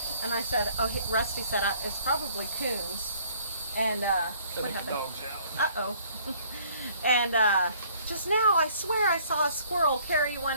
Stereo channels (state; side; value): inverted; both; correlation -0.59